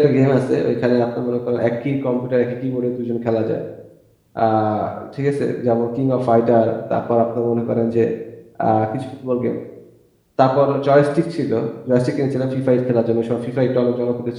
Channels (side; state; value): both; identical; correlation 1.00